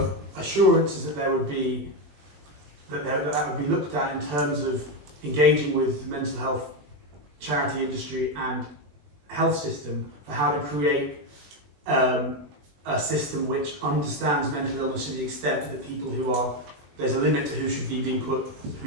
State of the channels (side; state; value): left; late; 20 ms